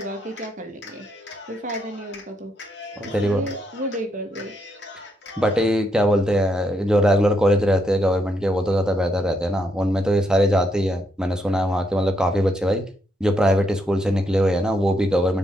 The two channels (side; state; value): both; normal; correlation 0.77